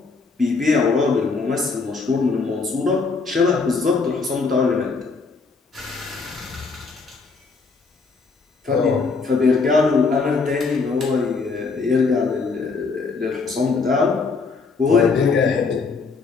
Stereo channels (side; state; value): right; quieter; 4.4 dB